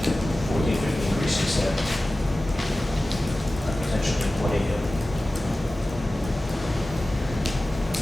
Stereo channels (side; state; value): both; normal; correlation 0.96